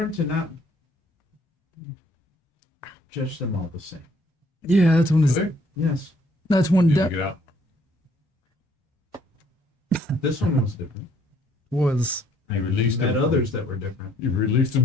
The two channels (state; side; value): normal; both; correlation 0.64